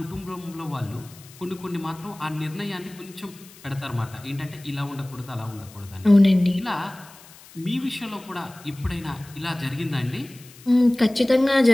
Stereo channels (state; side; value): noise; left; hiss, 22 dB below the sound